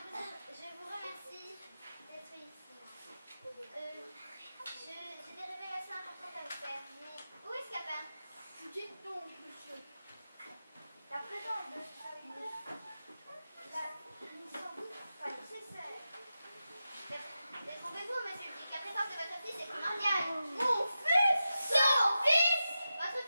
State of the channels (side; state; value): both; inverted; correlation -0.91